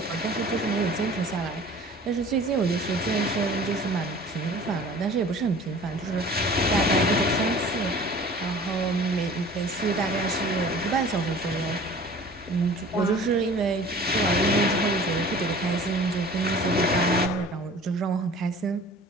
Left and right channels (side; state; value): both; normal; correlation 0.45